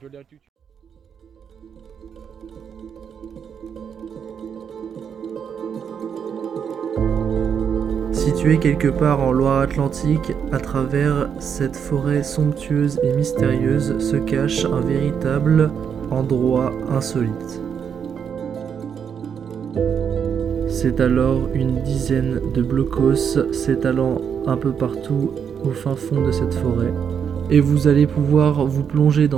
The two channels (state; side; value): quieter; left; 7.5 dB